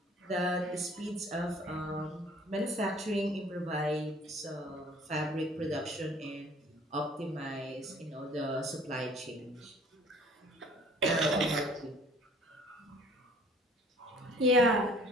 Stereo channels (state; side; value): normal; both; correlation 0.53